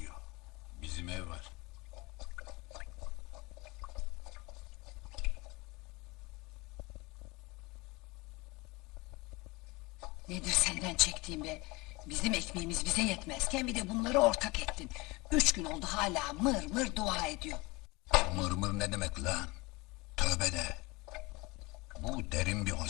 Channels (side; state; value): right; quieter; 24.1 dB